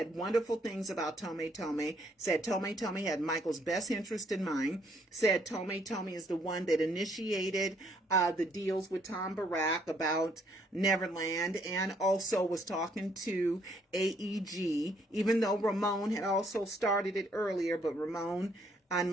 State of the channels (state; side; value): normal; both; correlation 0.68